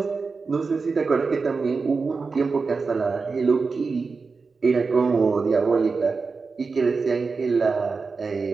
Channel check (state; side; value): quieter; left; 4.5 dB